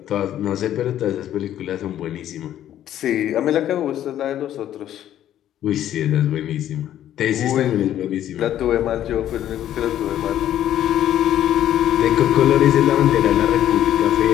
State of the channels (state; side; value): quieter; right; 11.6 dB